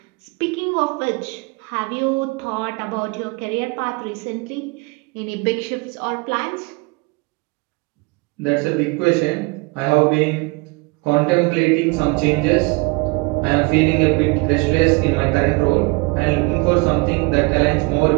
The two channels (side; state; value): left; quieter; 27.4 dB